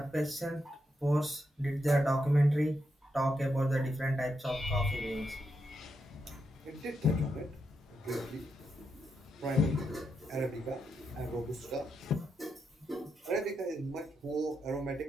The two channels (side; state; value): both; normal; correlation 0.83